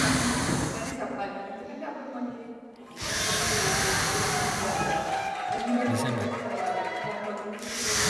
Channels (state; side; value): identical; both; correlation 1.00